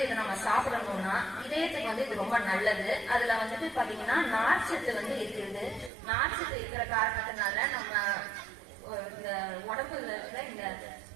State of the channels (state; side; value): drops out; left; at 5.9 s